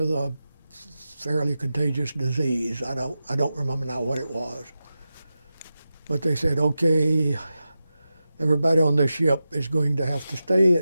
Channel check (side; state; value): both; inverted; correlation -0.92